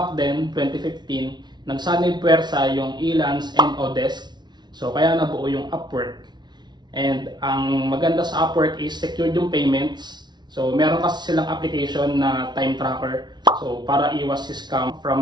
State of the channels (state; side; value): late; left; 0.20 ms